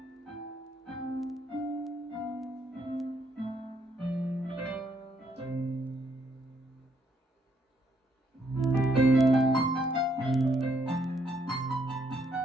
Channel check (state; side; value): normal; both; correlation 0.72